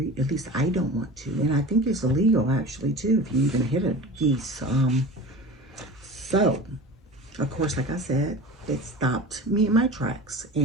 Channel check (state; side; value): normal; both; correlation 0.35